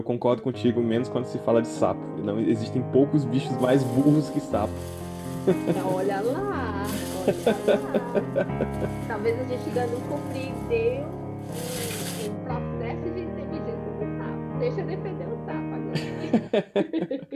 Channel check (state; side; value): identical; both; correlation 1.00